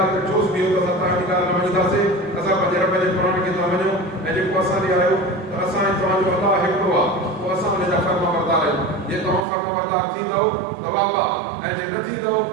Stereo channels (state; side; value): drops out; left; at 9.5 s